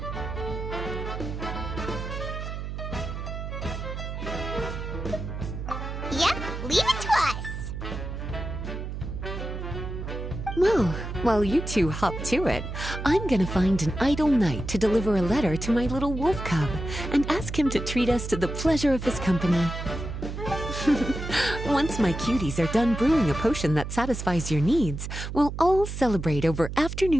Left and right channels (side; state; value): right; noise; hum, 6 dB below the sound